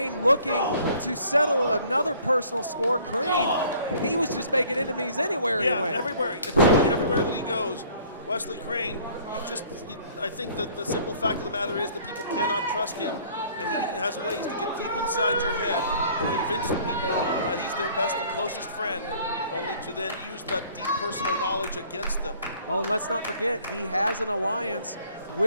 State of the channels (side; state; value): both; inverted; correlation -0.55